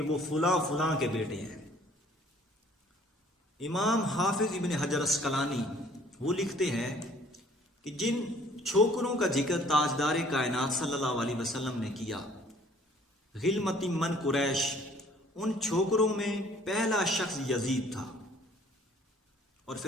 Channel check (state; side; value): normal; both; correlation 0.57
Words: وہ فلاں فلاں کے بیٹے ہیں. امام حافظ ابن حجر اسقلانی وہ لکھتے ہیں کہ جن چھوکروں کا ذکر تاجدار کائنات صلی اللہ علیہ وسلم نے کیا غلمت من قریش، ان چھوکروں میں پہلا شخص یزید تھا. اور